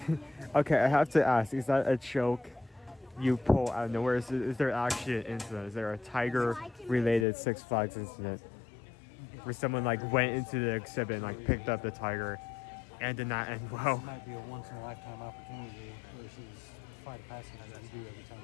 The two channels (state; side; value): drops out; right; at 7.2 s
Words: Okay, I have to ask, is that a joke you pull out of nowhere? Is there actually an incident? Is there a tiger-related Six Flags incident where someone like went into the exhibit and like picked up the tiger and did not end well? This might be a once-in-a-lifetime opportunity versus flight of passage that we do every time